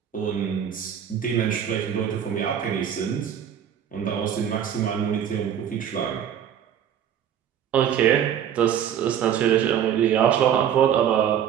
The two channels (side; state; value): left; quieter; 9.2 dB